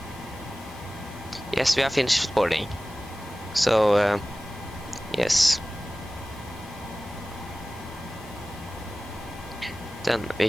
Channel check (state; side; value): noise; left; hiss, 22 dB below the sound